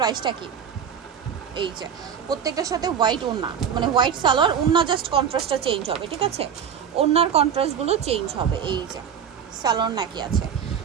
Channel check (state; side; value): quieter; left; 7.9 dB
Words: কি? এই যে প্রত্যেকটার সাথে হোয়াইট ওড়না, মানে হোয়াইট সালোয়ার, ওড়না জাস্ট কন্ট্রাস্টটা চেঞ্জ হবে, ঠিক আছে, ওড়নার কন্ট্রাস্টগুলো চেঞ্জ হবে। এই যে সালোয়ার নাকি আছে,